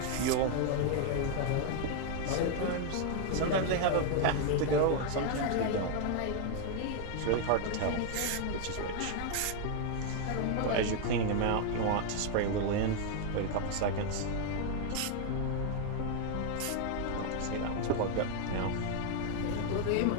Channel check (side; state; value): both; different; correlation 0.00